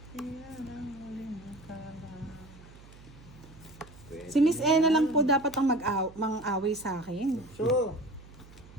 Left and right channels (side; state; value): right; noise; hum, 21 dB below the sound